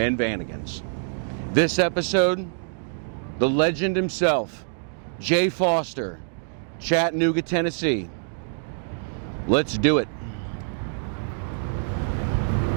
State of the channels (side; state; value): left; silent; digital silence